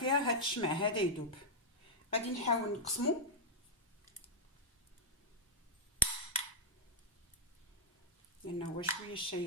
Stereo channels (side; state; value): both; normal; correlation -0.03